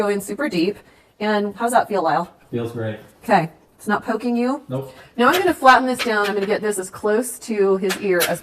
in super deep. And how's that feel, Lyle? Feels great. Okay. It's not poking you? Nope. Now I'm going to flatten this down. I'm going to get this as close to his ear as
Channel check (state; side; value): identical; both; correlation 1.00